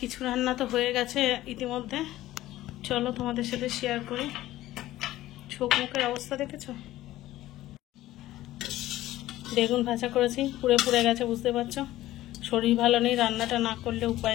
কিছু রান্না তো হয়ে গেছে ইতিমধ্যে, চলো তোমাদের সাথে শেয়ার করি। চোখ মুখের অবস্থা দেখেছো? বেগুন ভাজা করেছি, পুড়ে পুড়ে গেছে, বুঝতে পারছো। শরীর ভালো নেই, রান্নাটা না করলে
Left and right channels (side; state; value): right; quieter; 15.4 dB